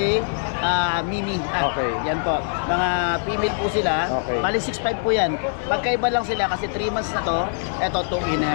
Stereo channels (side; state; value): right; silent; digital silence